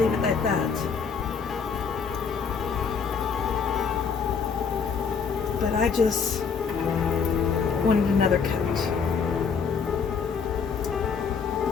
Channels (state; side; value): quieter; right; 5.9 dB